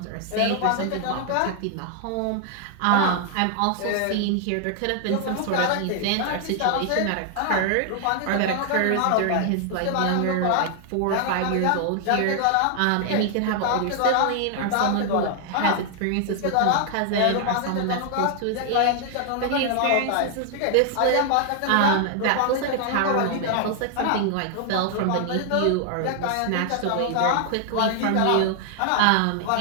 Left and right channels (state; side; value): different; both; correlation 0.00